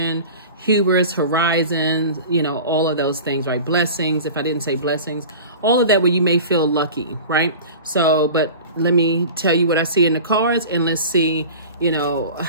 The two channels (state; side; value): inverted; both; correlation -0.37